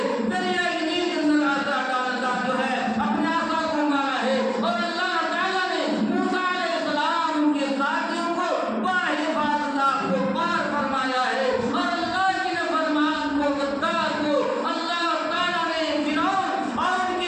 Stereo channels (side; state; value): both; identical; correlation 1.00